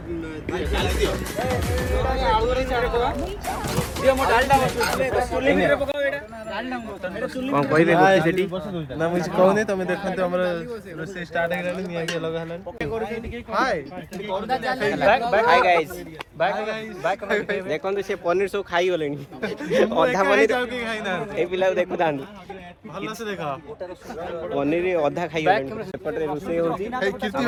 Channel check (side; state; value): both; identical; correlation 1.00